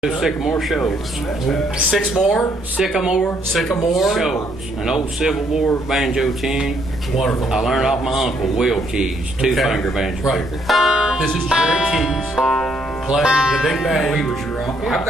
Sycamore Shoals. Sycamore Shoals. An old Civil War banjo tune. Wonderful. I learned off my uncle, Will Keys, two-finger banjo Right. picker. This is Jerry Keys playing the big band. He was your uncle. I've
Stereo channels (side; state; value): both; normal; correlation 0.70